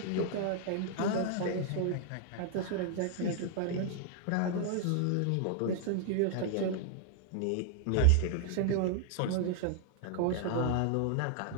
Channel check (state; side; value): different; both; correlation 0.00